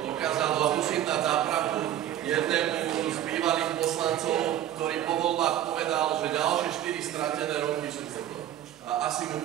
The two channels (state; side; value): quieter; left; 11.8 dB